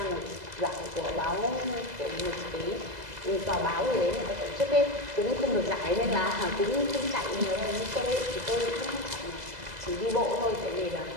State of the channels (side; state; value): left; late; 2.0 ms